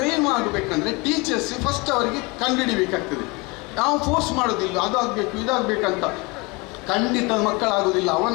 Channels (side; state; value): right; quieter; 26.7 dB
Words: ಮಾಡಬೇಕಂದ್ರೆ ಟೀಚರ್ಸ್ ಫಸ್ಟ್ ಅವರಿಗೆ ಕಂಡುಹಿಡಿಬೇಕಾಗ್ತದೆ. ನಾವು ಫೋರ್ಸ್ ಮಾಡೋದಿಲ್ಲ, ಅದು ಆಗಬೇಕು ಇದಾಗಬೇಕಂತ. ಖಂಡಿತ ಮಕ್ಕಳಾಗೋದಿಲ್ಲ,